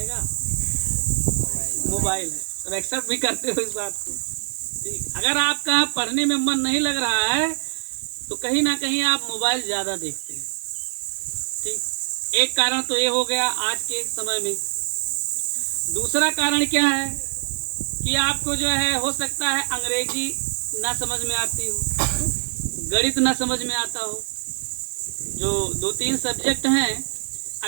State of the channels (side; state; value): left; silent; digital silence